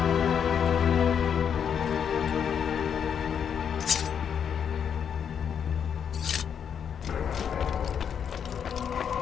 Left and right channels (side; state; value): right; quieter; 7.8 dB